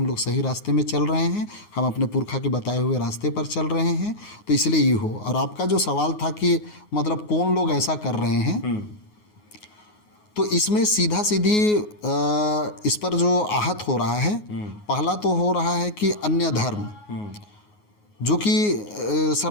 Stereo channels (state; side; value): late; right; 9.5 ms